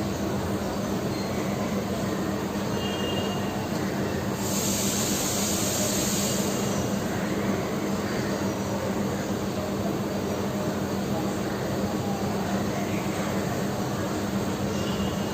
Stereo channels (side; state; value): both; identical; correlation 1.00